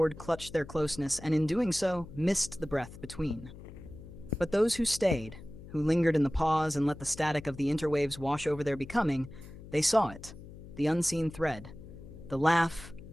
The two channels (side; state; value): left; noise; hum, 15 dB below the sound